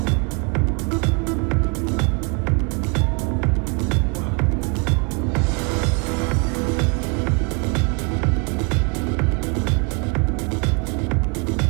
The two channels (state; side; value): quieter; left; 33.7 dB